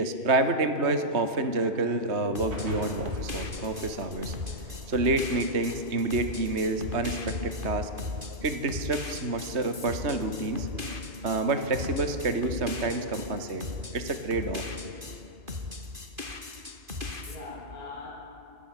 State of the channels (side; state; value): left; late; 2.5 ms